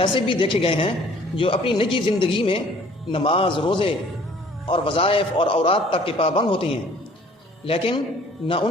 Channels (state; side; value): normal; both; correlation 0.54